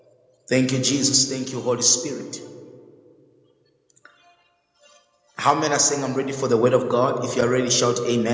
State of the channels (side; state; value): both; identical; correlation 1.00